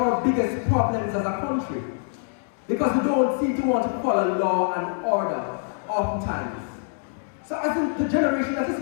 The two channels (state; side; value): silent; right; 62 dB below the other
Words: our biggest problems as a country. Because we don't seem to want to follow law and order oftentimes. So I think the generation that